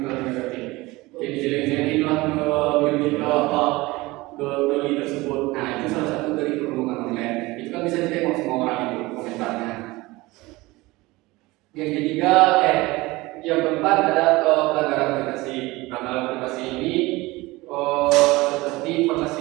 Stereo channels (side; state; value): left; quieter; 21.1 dB